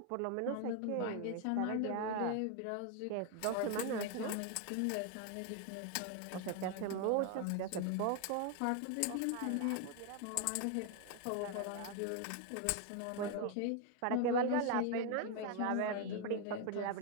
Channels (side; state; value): both; different; correlation 0.01